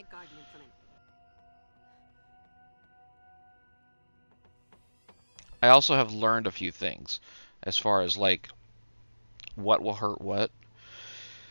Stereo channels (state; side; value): inverted; both; correlation -1.00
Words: garden implement. I also have learned a few things, as far as, like, what will hurt what.